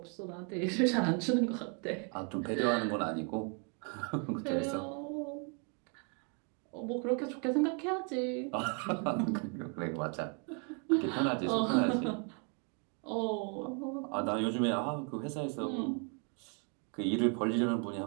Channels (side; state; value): left; quieter; 38.1 dB